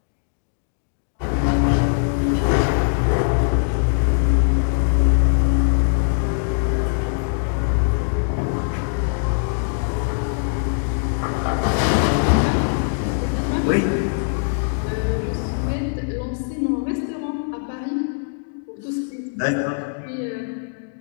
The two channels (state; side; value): silent; right; digital silence